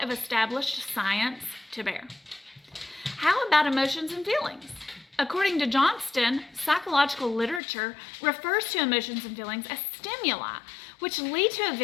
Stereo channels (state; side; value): drops out; right; at 7.6 s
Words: of established science to bear. How about emotions and feelings? According to Johnston, psychological literature refers to emotions and feelings as stimuli, which lead to